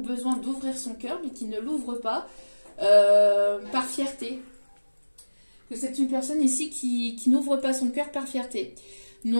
d'ouvrir son cœur, mais qui ne l'ouvre pas par fierté. Que c'est une personne ici qui n'ouvre pas son cœur par fierté.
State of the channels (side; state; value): both; inverted; correlation -1.00